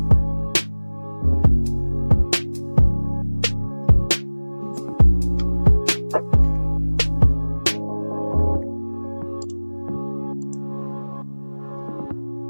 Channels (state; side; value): inverted; both; correlation -1.00